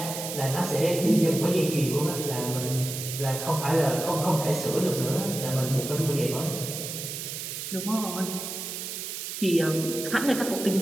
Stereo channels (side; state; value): right; noise; hiss, 6 dB below the sound